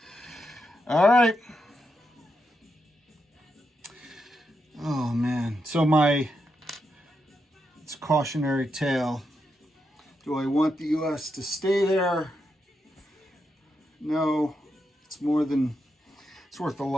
All right. Oh man. So it's a cautionary tale. Do I want the US to stay there? No. It's worth a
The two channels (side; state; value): both; normal; correlation 0.84